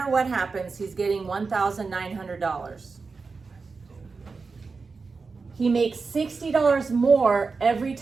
what happens, he's getting $1,900. He makes $60 more every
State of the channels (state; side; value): quieter; left; 4.5 dB